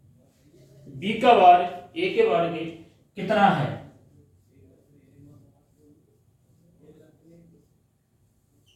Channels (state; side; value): identical; both; correlation 1.00